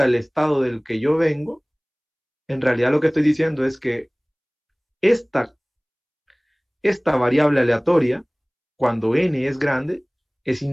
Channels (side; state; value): both; identical; correlation 1.00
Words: el estado del que yo vengo, en realidad lo que estoy diciendo es que esta, esta variable aleatoria, cuando n es grande, es